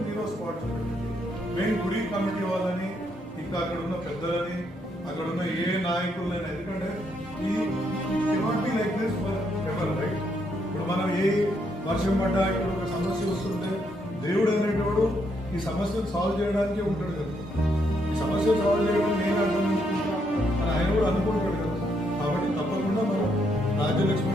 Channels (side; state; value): both; normal; correlation 0.75